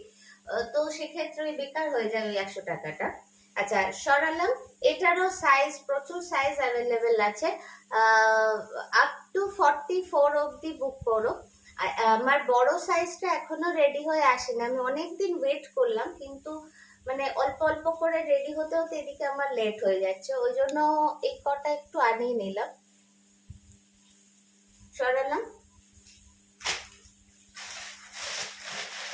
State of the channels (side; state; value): both; identical; correlation 1.00